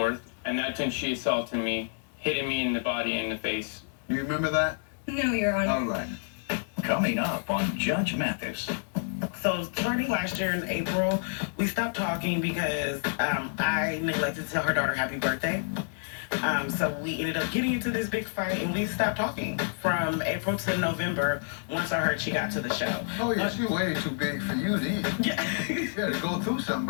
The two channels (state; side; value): silent; right; digital silence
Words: And that's when she assaulted me, hitting me in the body and the face. You remember that? No, Your Honor. All right. Coming up on Judge Mathis. So starting last year in April, we stopped talking because I neglected to tell her daughter happy birthday. So we ended up getting into this big fight and we stopped talking from April to November once I heard she got to the show. Oh, yeah, she's way too big for you then. Yeah. You gotta go through